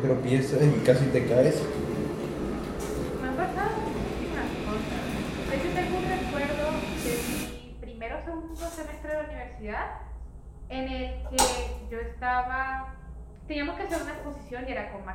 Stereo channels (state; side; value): identical; both; correlation 1.00